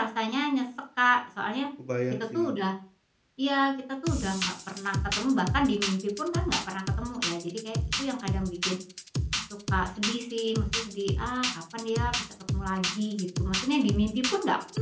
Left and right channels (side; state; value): both; identical; correlation 1.00